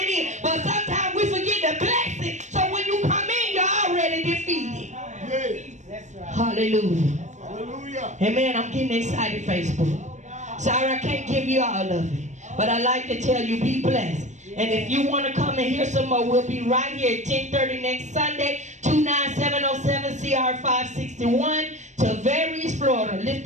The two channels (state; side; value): late; left; 0.34 ms